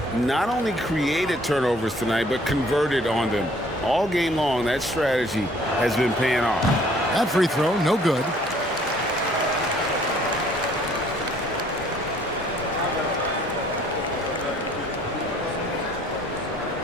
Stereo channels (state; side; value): normal; both; correlation 0.59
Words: not only created turnovers tonight, but converted on them. All game long, that strategy has been paying off. That free throw, no good.